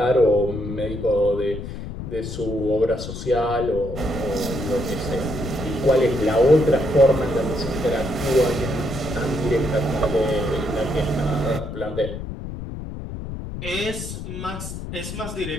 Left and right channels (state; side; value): noise; left; rumble, 8 dB below the sound